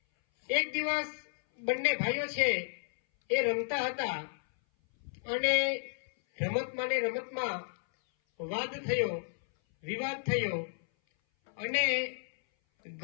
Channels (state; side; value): silent; right; 56 dB below the other